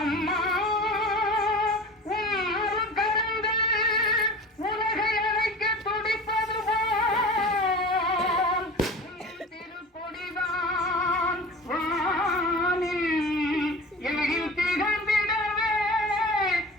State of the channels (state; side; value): normal; both; correlation 0.36